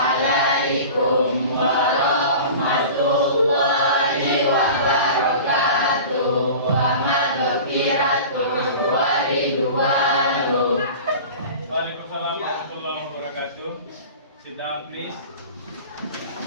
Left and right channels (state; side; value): inverted; both; correlation -0.37